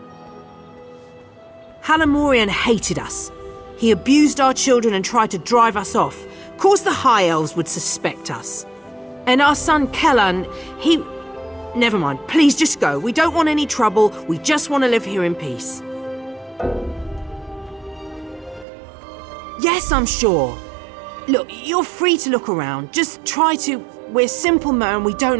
Halimorian hated us. He abused our children and tried to drive us off. Of course the High Elves would suspect us. And our son Kellan, he... Never mind, please just go. We don't want any trouble. We just want to live here in peace. Yes, I'm sure. Look, you're free to look around. Just try to... We're simple men, we don't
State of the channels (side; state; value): left; drops out; at 18.7 s